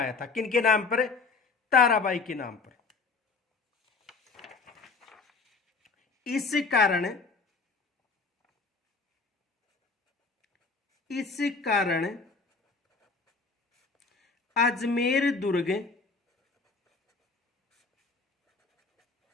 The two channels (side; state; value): right; quieter; 4.2 dB